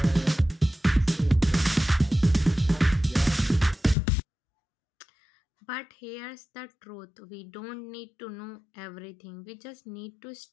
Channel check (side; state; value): right; drops out; at 4.0 s